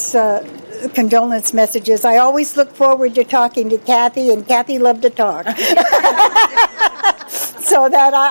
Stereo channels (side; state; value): both; inverted; correlation -1.00